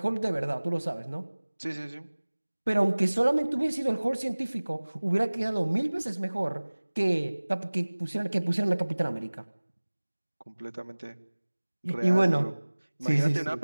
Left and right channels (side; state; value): both; inverted; correlation -1.00